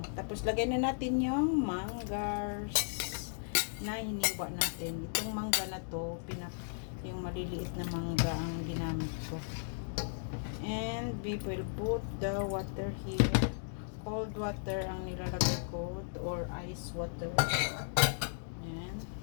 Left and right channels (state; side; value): silent; right; digital silence